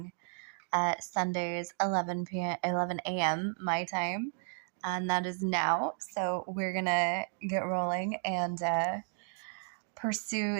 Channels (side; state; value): left; silent; 56 dB below the other